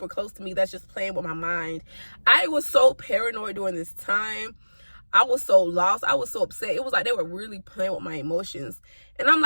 close to me that's just playing with my mind? I was so paranoid during this time. I was so lost. I was so upset. It was like they were really playing with my emotions. And I'm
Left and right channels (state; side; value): inverted; both; correlation -1.00